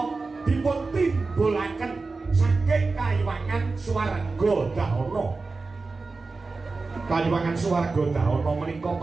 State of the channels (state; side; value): quieter; left; 3.9 dB